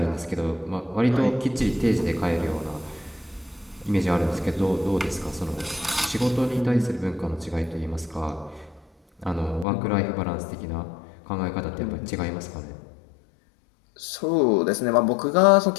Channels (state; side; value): drops out; right; at 9.7 s